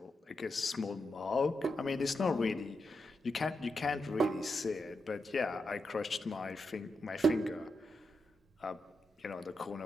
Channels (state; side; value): normal; both; correlation 0.86